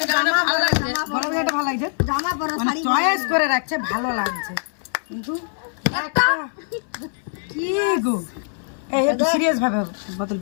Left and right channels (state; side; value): silent; right; 64 dB below the other